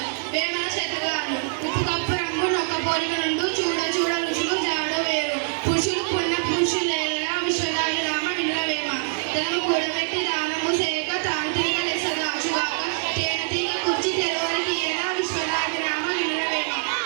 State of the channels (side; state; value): left; silent; 57 dB below the other